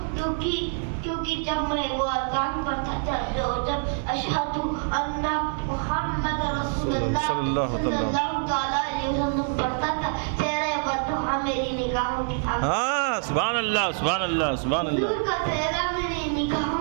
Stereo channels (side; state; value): left; silent; 61 dB below the other